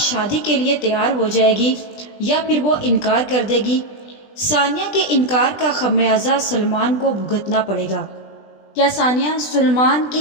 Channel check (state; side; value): late; right; 20 ms